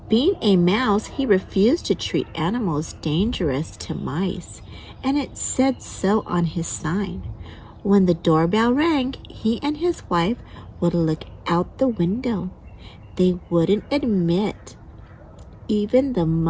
Being a mouse, he refused to treat animals dangerous to mice, and it said so on his sign. When the doorbell rang, he and his wife would look out the window. They wouldn't admit even the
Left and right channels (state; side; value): identical; both; correlation 1.00